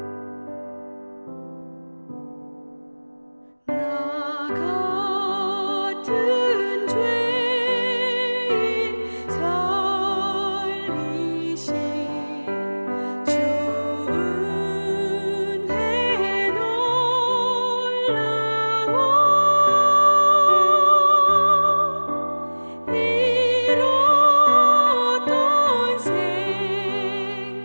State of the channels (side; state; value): both; inverted; correlation -1.00